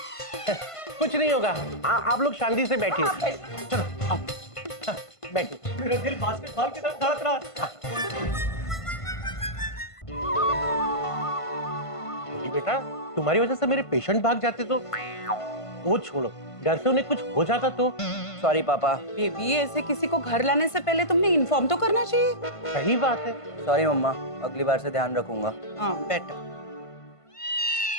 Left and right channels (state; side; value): late; right; 1.5 ms